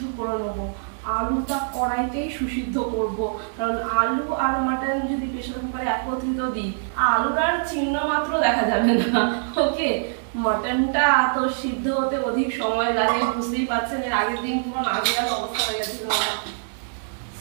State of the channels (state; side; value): silent; left; 63 dB below the other